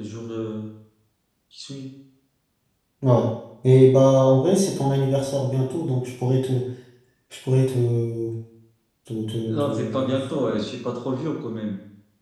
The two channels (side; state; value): both; identical; correlation 1.00